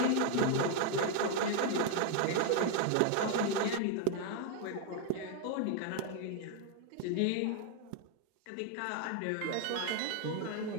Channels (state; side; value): different; both; correlation 0.00